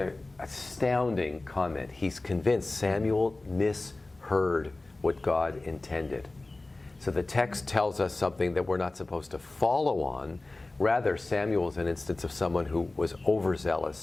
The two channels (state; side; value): quieter; right; 3.0 dB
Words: astounding comment. He's convinced Samuel misheard what God intended. So the text tells us something that we're not supposed to follow on. Rather, Samuel is an instance of someone who was